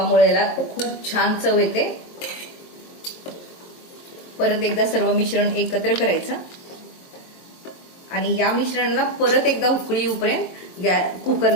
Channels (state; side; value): late; right; 23 ms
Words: याला खूप छान चव येते. परत एकदा सर्व मिश्रण एकत्र करायचं आणि या मिश्रणाला परत एकदा उकळी येऊपर्यंत